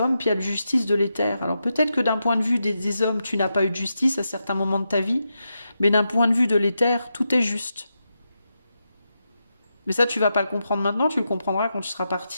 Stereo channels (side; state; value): both; inverted; correlation -0.86